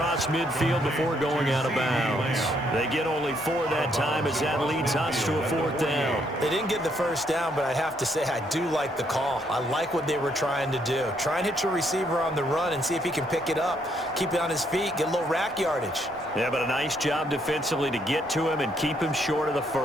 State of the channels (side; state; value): both; normal; correlation 0.72